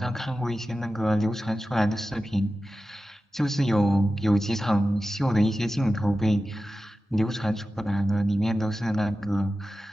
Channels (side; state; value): both; normal; correlation 0.94